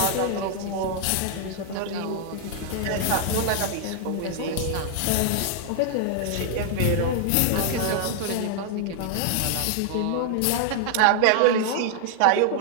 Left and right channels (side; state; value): both; different; correlation 0.00